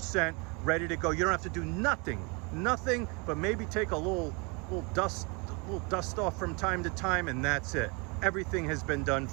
ready to go, you don't have to do nothing but maybe take a little dust off from time to time, and that's it. Everything has been done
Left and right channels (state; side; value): quieter; left; 30.6 dB